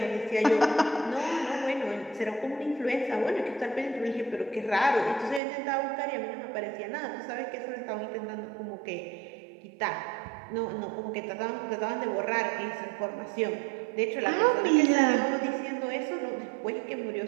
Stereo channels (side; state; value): left; drops out; at 5.4 s